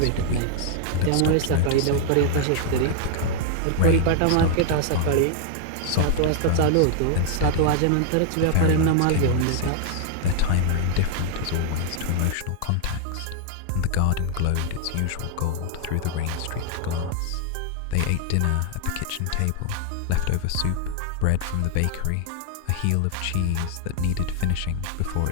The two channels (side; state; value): both; different; correlation 0.00